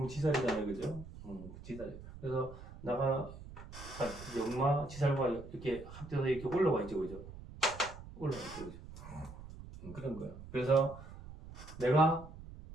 지살이잖아요, 그죠? 지살. 그래서 나가 역마 지살과 이렇게 합쳐서 이렇게 올라와 있죠, 그죠? 올라와 있죠, 그죠? 그런 거예요. 그래서 내가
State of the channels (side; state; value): right; noise; rumble, 14 dB below the sound